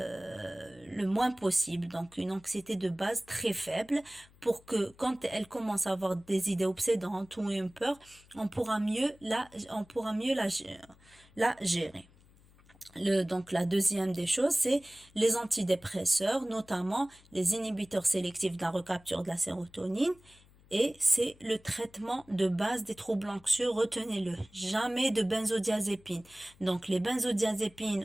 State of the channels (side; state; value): left; noise; hum, 27 dB below the sound